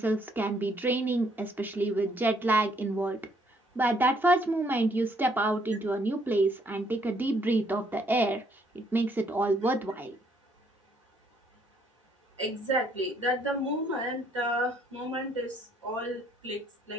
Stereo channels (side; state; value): both; normal; correlation 0.68